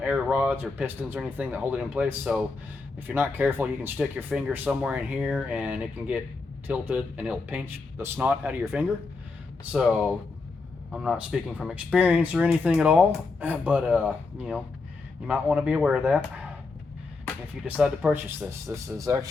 rods or pistons or anything that hold it in place. So if you're not careful, you can stick your finger somewhere in here and it can get tilted and it'll pinch the snot out of your finger. So I'm not speaking from experience or anything at all, but you know, you might want to be aware of that if you decide to purchase this. This is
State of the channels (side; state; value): right; quieter; 4.0 dB